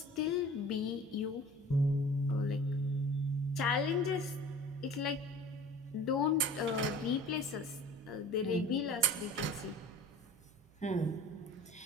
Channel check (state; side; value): noise; right; hum, 28 dB below the sound